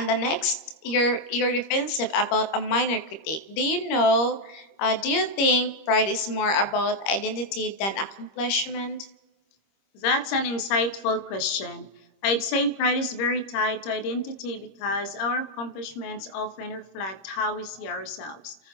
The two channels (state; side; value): late; right; 26 ms